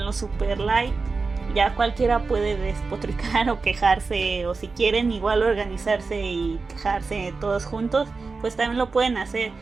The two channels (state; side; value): quieter; left; 4.2 dB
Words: lo super light. Ya cualquiera puede despotricar o quejarse, o si quieren igual organizarse y quejarse todos juntos, pues también lo pueden hacer.